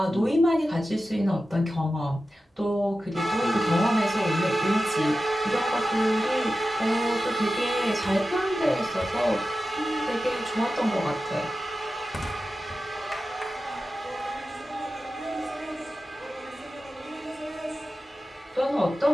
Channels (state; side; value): normal; both; correlation 0.93